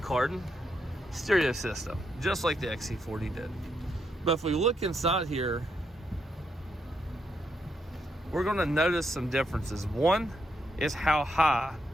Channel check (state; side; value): normal; both; correlation 0.79